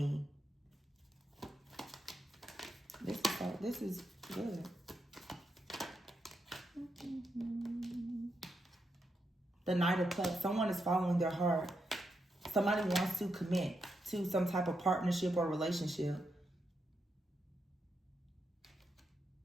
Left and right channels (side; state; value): both; normal; correlation 0.83